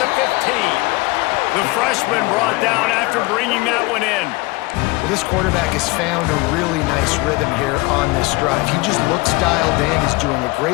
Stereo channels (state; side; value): quieter; right; 23.3 dB